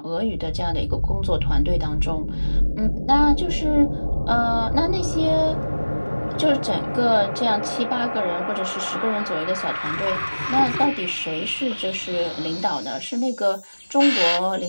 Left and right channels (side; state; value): both; inverted; correlation -1.00